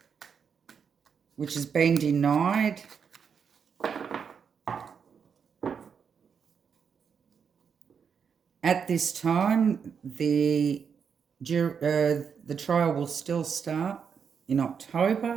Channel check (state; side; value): quieter; left; 6.7 dB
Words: which has been denied. At this time, the trial will still start in